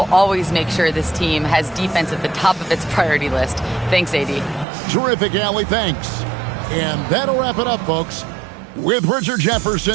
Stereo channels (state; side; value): drops out; left; at 4.7 s